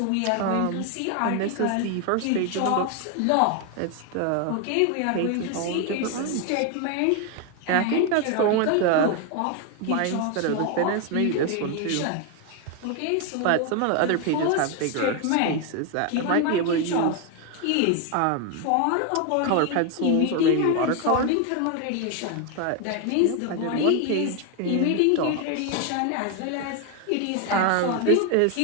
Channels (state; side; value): different; both; correlation 0.01